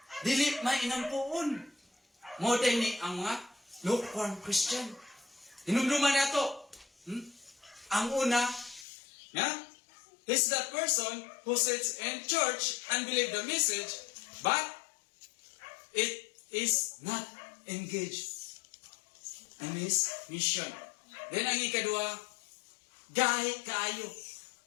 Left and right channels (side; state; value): right; drops out; at 8.8 s